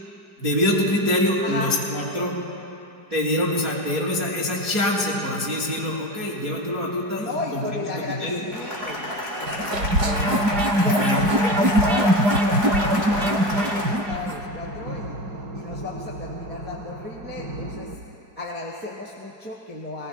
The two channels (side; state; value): left; late; 4.8 ms